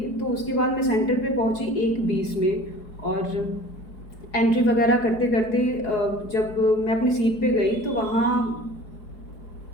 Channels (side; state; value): right; late; 4.7 ms